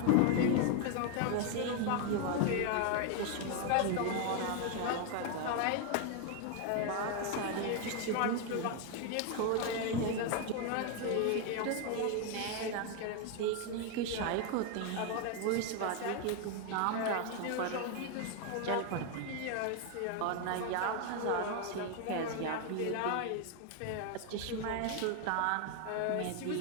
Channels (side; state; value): both; different; correlation 0.01